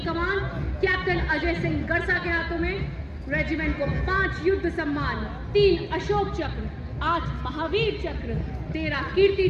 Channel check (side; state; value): both; identical; correlation 1.00